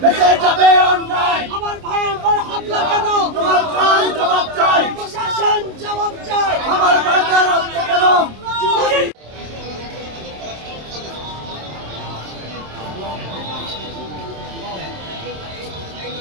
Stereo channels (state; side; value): late; left; 27 ms